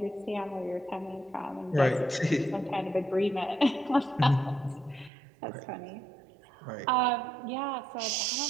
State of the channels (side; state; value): left; drops out; at 5.1 s